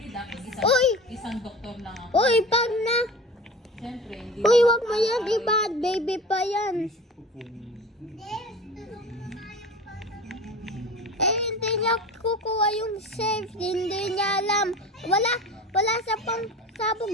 dapat Uy! isang doktor lang ako. Uy, pag na. Siyempre, hindi Uy, naman wag mo yan. Iba, baby pa yan. Eh, hindi niya kukuha yung safe. Hindi niya alam. Wala sa pangsabog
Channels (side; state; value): both; normal; correlation 0.35